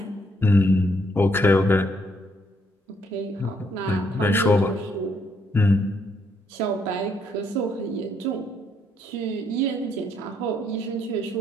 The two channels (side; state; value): both; normal; correlation 0.72